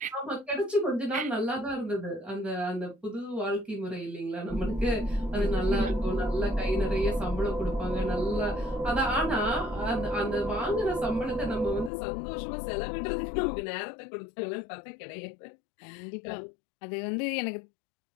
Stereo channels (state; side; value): drops out; right; at 11.9 s